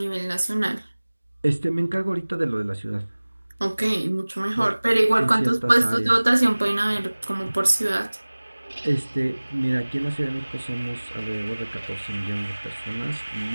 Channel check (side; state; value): both; inverted; correlation -1.00